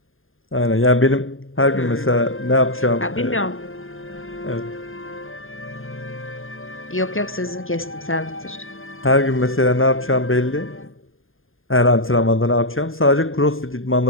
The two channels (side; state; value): right; late; 0.59 ms